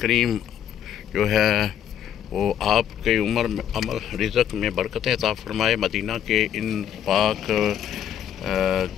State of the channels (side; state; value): right; quieter; 9.8 dB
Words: जो है वो आपके उम्र में अमल रिज़्क़ में बरकतें अता फरमाए। मदीना के इन पाक